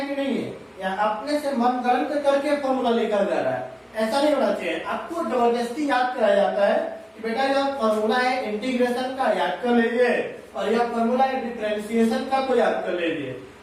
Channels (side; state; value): both; identical; correlation 1.00